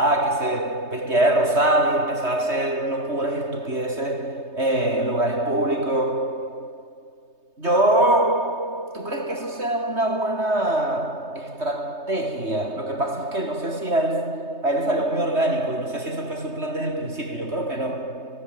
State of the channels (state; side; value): late; left; 3.2 ms